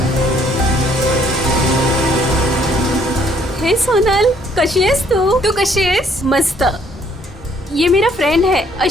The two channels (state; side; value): normal; both; correlation 0.63